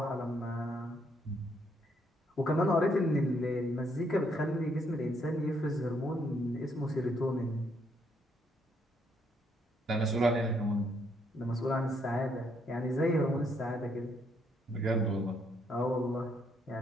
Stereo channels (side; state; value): both; normal; correlation 0.72